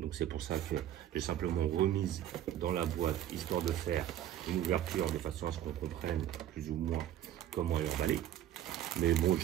donc c'est pour ça que j'ai simplement remise dans la boîte, histoire de faire une ouverture de façon à ce qu'on comprenne plus ou moins comment elle est emballée. Mais bon,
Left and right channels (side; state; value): left; quieter; 11.7 dB